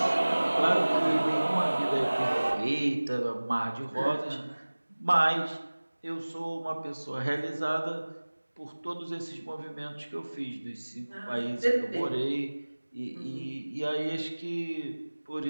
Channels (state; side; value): inverted; both; correlation -1.00